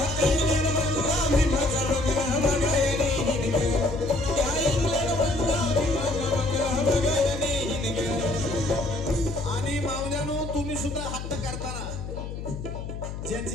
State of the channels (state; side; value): noise; left; hum, 7 dB below the sound